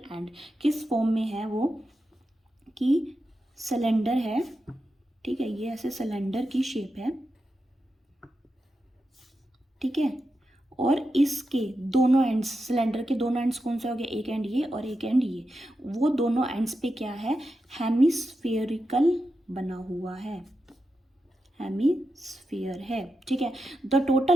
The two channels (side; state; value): both; normal; correlation 0.89